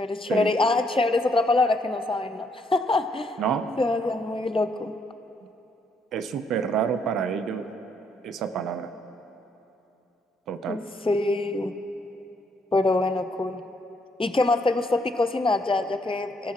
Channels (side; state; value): both; normal; correlation 0.71